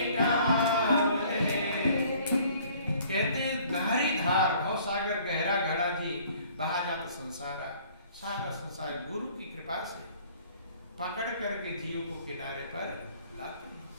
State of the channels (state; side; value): inverted; both; correlation -0.55